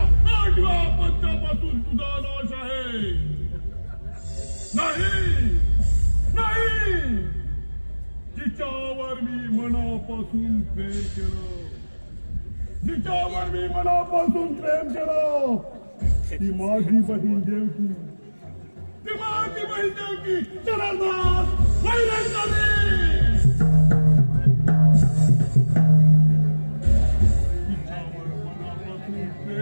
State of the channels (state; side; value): inverted; both; correlation -1.00